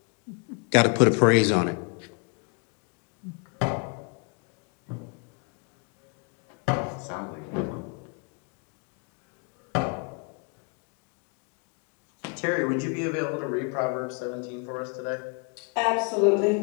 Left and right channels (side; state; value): right; quieter; 35.4 dB